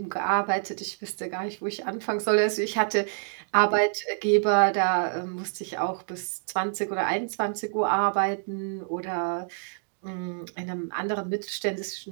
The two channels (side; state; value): left; silent; digital silence